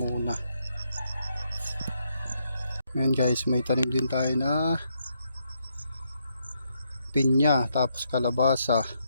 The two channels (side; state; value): both; inverted; correlation -0.77